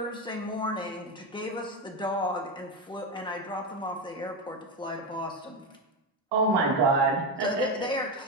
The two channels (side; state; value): both; normal; correlation 0.13